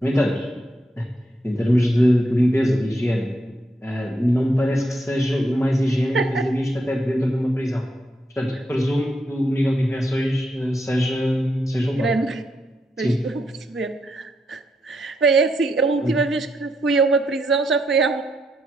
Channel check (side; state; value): both; normal; correlation 0.80